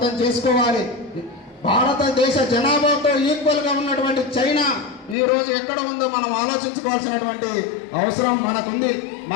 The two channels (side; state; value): right; drops out; at 5.2 s